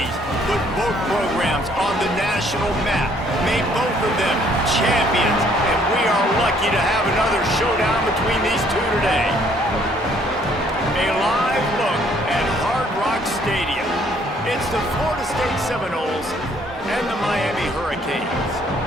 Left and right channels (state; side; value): normal; both; correlation 0.63